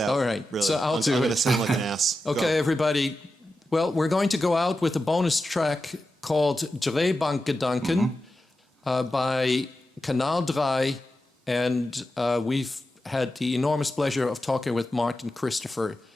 All right, really. so I'm going to sound like an ass. Okay, everybody. Well, we're going to go out with a bonus track called Drehbankgedanken by Kanal Drei, and we've had the enormous pleasure of talking with Martin Christopher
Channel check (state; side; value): normal; both; correlation 0.91